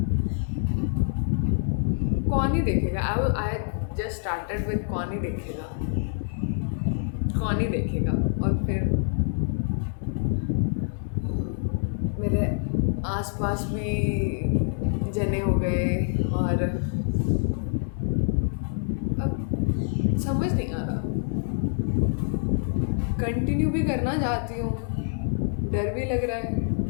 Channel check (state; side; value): silent; right; digital silence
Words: कौन ही देखेगा। आई जस्ट स्टार्टेड विद कौन ही देखेगा, कौन ही देखेगा। और फिर मेरे आसपास भी जने हो गए और अब समझ नहीं आ रहा, कंटिन्यू भी करना चाहती हूँ, डर भी लग रहा है।